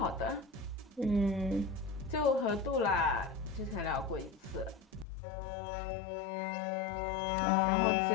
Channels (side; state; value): right; drops out; at 5.1 s